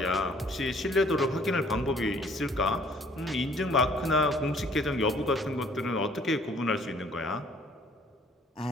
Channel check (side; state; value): both; normal; correlation 0.58